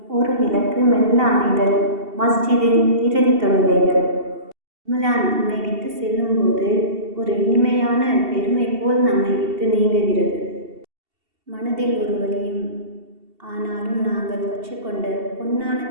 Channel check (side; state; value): left; late; 2.7 ms